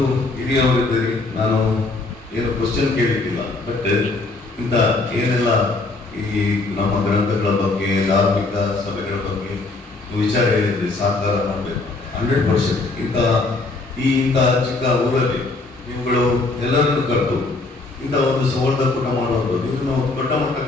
ಹಿರಿಯವರಿದ್ದೀರಿ, ನಾನು ಏನು ಕ್ವಶನ್ ಕೇಳಿದ್ದಿಲ್ಲ, ಬಟ್ ಇಂಥ ಏನೆಲ್ಲ ಈ ನಮ್ಮ ಗ್ರಂಥಗಳ ಬಗ್ಗೆ, ಧಾರ್ಮಿಕ ಸಭೆಗಳ ಬಗ್ಗೆ ವಿಚಾರ ಹೇಳಿದ್ರಿ, ಸಾಕಾರ ಮಾಡಬೇಕು 100%. ಇಂಥ ಚಿಕ್ಕ ಊರಲ್ಲಿ ನೀವುಗಳು ಎಲ್ಲರನ್ನು ಕರೆದು ಇಂಥ ಒಂದು ಸಂವರ್ಧಕೂಟ ಮಾಡುವಂಥದ್ದು, ಇದನ್ನು ದೊಡ್ಡ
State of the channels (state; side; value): quieter; right; 3.4 dB